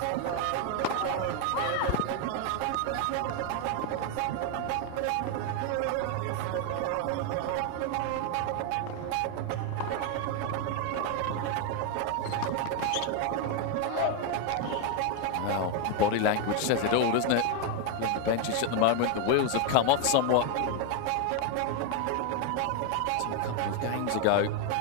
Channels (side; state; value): both; different; correlation 0.01